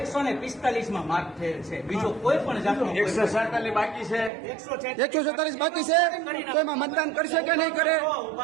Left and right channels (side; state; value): left; drops out; at 4.3 s